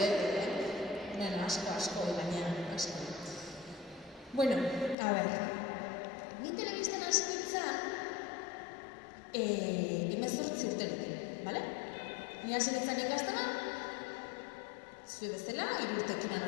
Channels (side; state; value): right; drops out; at 5.0 s